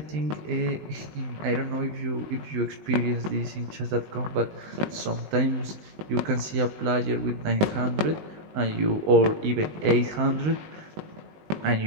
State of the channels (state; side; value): late; left; 19 ms